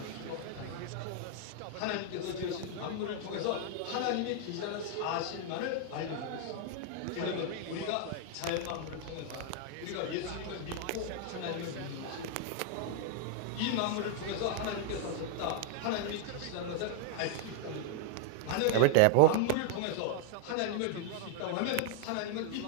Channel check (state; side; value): different; both; correlation 0.00